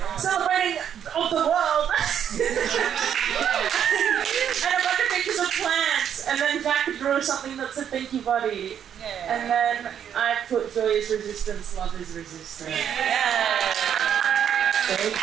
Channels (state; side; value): quieter; left; 9.0 dB